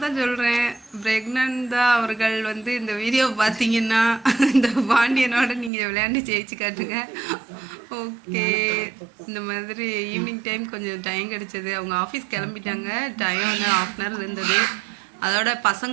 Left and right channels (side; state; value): left; drops out; at 5.7 s